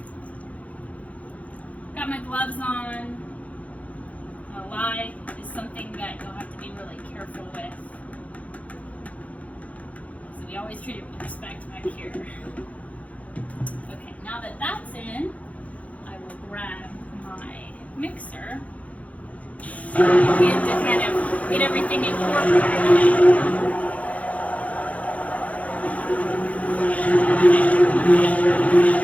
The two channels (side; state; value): right; late; 0.068 ms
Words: Got my gloves on. Lye is something that you'll have to be really careful with. So we always treat it with respect back here. Okay, now that that's in, I will grab my mixer and to kind of get everything incorporated.